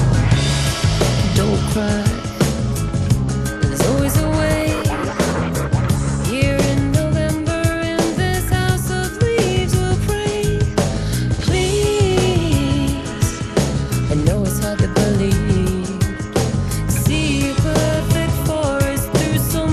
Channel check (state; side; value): identical; both; correlation 1.00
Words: Don't cry. There's always a way. Here in November, in this house of leaves, we'll pray. Please, I know it's hard to believe. See a perfect forest through so